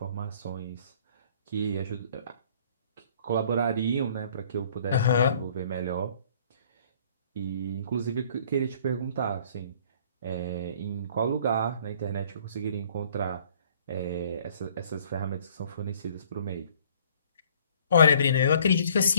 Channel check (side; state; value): both; inverted; correlation -0.57